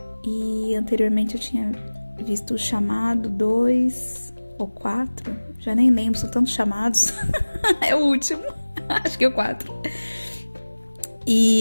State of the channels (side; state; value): both; inverted; correlation -1.00